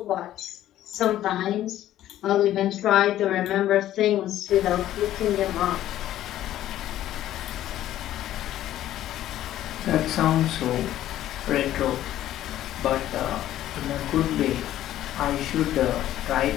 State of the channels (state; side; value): quieter; right; 13.0 dB